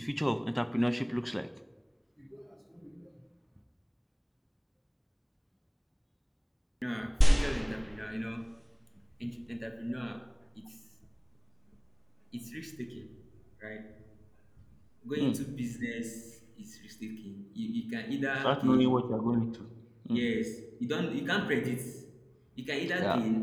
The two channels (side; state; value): both; identical; correlation 1.00